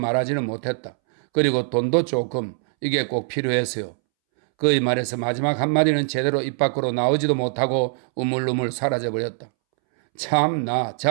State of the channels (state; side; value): silent; left; 64 dB below the other